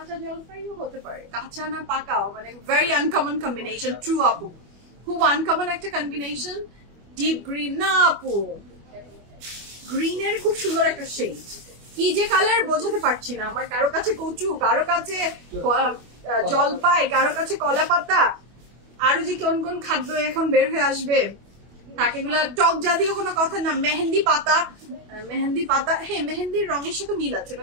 জলপাইও হতে পারে, কাঁচা না পাকাও, মানে ভেরি আনকমন কম্বিনেশন। ট্রু আপু, খুব আনকমন একটা কম্বিনেশন। ডিপ গ্রিন না আপু, গ্রিনের খুব সুন্দর একটা শেড। কি যে কালার বোঝাতে পারছি না। আমার কারো কাছে কচু, কারো কাছে জলপাই, কারো কাছে কলা পাতা, আরো যে কোন কোন খাদ্য এখন বের হয়ে আসবে, এগুলা টক জাতীয় কোনো কথা না। মেহেন্দি পাতা, মেহেন্দি পাতা, হ্যাঁ মেহেন্দির রঙের সাথে মিল আছে,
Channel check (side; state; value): left; late; 25 ms